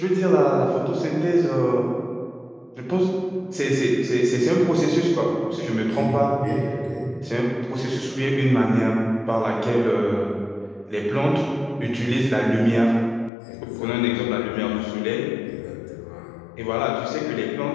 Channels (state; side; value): drops out; right; at 13.3 s